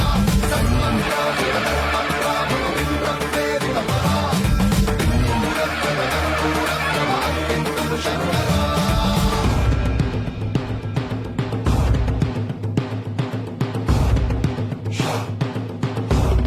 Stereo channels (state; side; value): identical; both; correlation 1.00